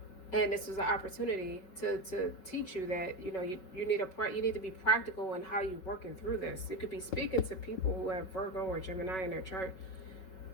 And this was an opportunity to teach you that you need to be practical in how you're working through this. You could be speaking to people who have Virgo or Gemini in their chart,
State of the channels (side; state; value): right; late; 5.3 ms